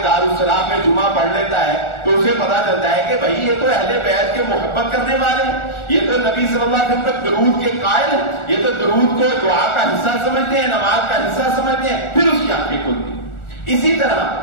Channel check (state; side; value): late; right; 1.4 ms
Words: دارالسلام میں جمعہ پڑھ لیتا ہے تو اسے پتا چلتا ہے کہ بھائی یہ تو اہل بیت کے محبت کرنے والے ہیں، یہ تو نبی صلی اللہ علیہ وسلم تک درود کے قائل ہیں، یہ تو درود کو دعا کا حصہ سمجھتے ہیں، نماز کا حصہ سمجھتے ہیں. پھر اس کی آنکھیں کھلتی. اسی طرح